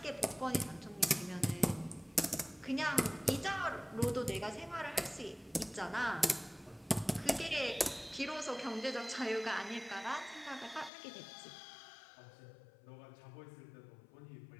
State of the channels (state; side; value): drops out; right; at 10.9 s